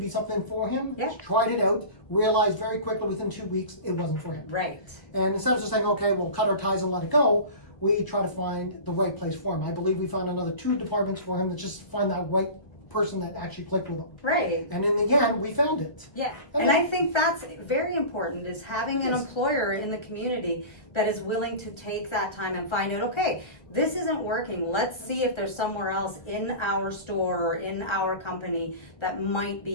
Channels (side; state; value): right; late; 1.3 ms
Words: be something for him. Yeah. Tried it out. Realized very quickly within 2 weeks it wasn't for him. Right. And instead of just saying, okay, we'll cut our ties and let it go, we try to find the right place for him. I believe we found another 2 departments for him to just find that right person that actually clicked with them. Right. And in the end, we found it. Yeah. Okay. And I think that's very important, is having an Yes. employer in the community that is willing to take that time and find out, okay, this isn't working. Let's see if there's somewhere else in our store or in our company that might